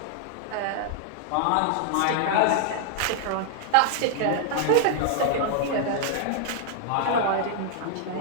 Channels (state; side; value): different; both; correlation 0.00